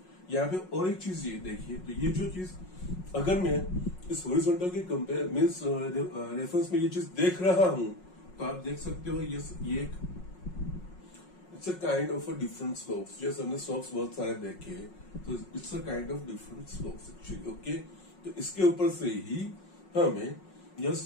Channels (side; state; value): right; late; 5.5 ms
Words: यहाँ पे और एक चीज ये देखिए, तो ये जो चीज अगर मैं इस हॉरिजॉन्टल के कंपेयर मीन्स रेफरेंस में ये चीज देख रहा हूं तो आप देख सकते हो यस ये एक it's a kind of a different slopes. जैसे हमने स्लोप्स बहुत सारे देखे, तो it's a kind of different slopes actually okay. तो इसके ऊपर से ही हमें यस